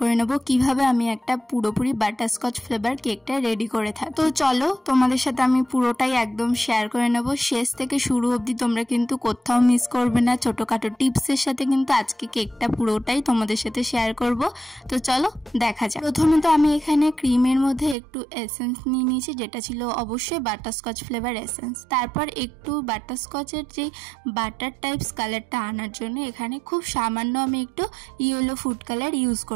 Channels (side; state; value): left; drops out; at 17.9 s